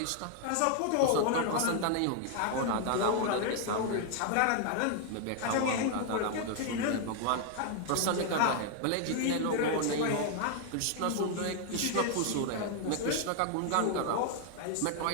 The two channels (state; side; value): different; both; correlation 0.00